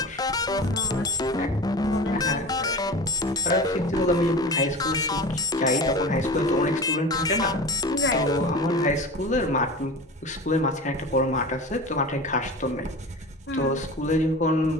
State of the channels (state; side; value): normal; both; correlation 0.33